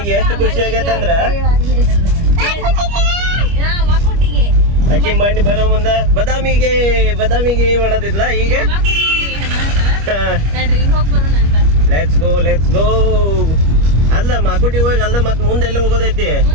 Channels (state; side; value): late; left; 25 ms